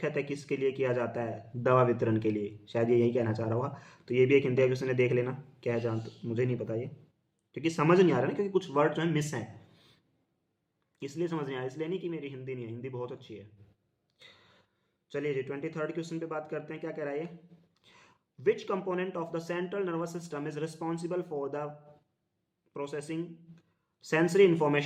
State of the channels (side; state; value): both; identical; correlation 1.00